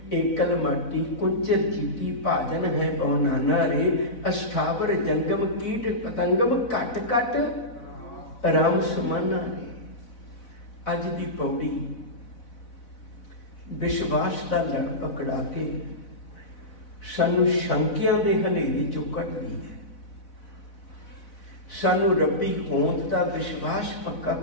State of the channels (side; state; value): right; late; 4.0 ms